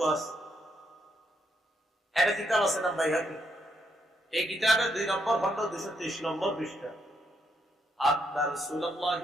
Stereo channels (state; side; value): normal; both; correlation 0.77